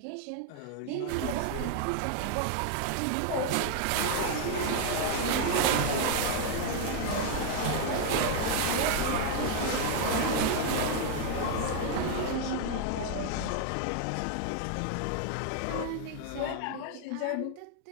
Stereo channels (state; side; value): different; both; correlation 0.00